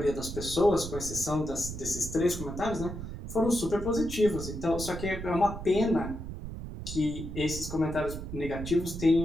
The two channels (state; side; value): noise; right; rumble, 8 dB below the sound